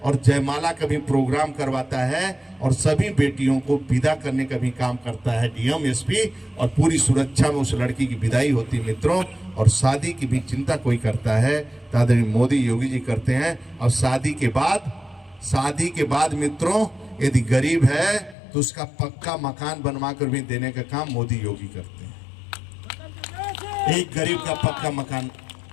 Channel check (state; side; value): drops out; right; at 18.4 s